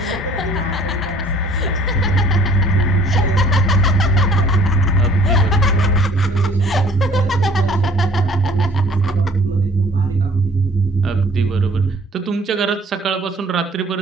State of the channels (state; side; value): normal; both; correlation 0.54